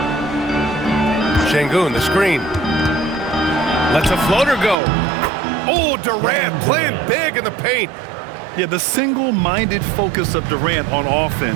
Şengün, the screen. Lets a floater go. Oh, Durant playing big in the paint. Yeah, the single-minded focus of Durant on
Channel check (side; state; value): left; drops out; at 4.8 s